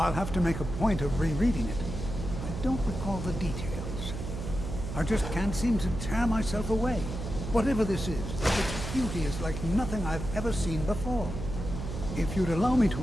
have to make a point of rereading it. I don't recall the details. I just can't seem to tear myself away. Whatever this is, its beauty is like nothing I've ever seen before. If you'd allow me to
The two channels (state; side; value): noise; right; hum, 6 dB below the sound